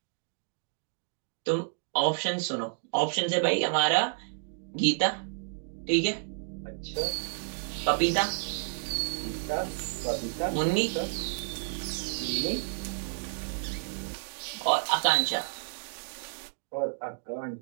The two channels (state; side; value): silent; left; digital silence